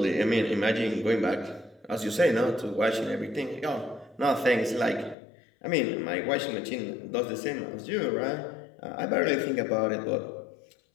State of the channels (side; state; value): right; drops out; at 5.2 s